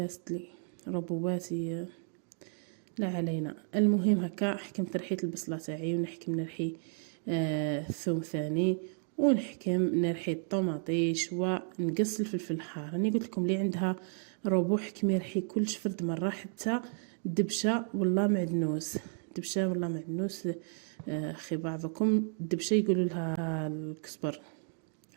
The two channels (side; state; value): left; silent; 56 dB below the other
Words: لي ربواتي لا علينا. المهم هكا حكمت رحيت البصله تاعي ونحكم نرحي الثوم ثاني، ونحكم نرحي الطوماطيش ونقص الفلفل الحار. راني قلت لكم اللي عندها روبو حكمي رحي كلش فرد مره، حتى دبشه ولا معدنوس. دبشه ولا معدنوس اخي بعضكم دبشه يقولوا لها الكزبر